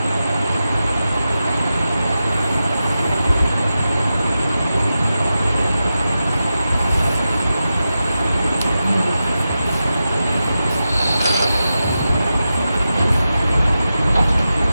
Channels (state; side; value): inverted; both; correlation -0.91